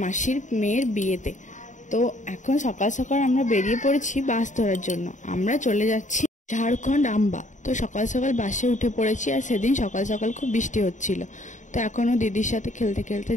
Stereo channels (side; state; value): right; late; 0.36 ms